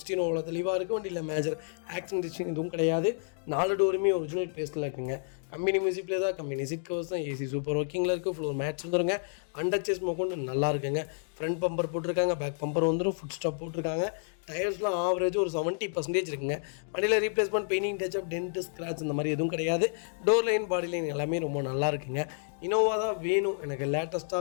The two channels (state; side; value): silent; right; digital silence